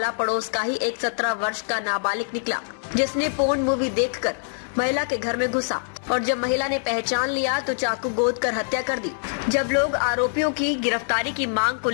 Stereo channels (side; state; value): right; silent; digital silence